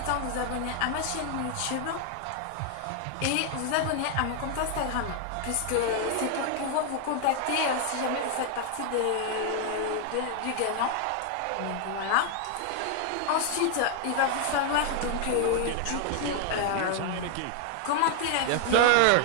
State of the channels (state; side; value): different; both; correlation 0.00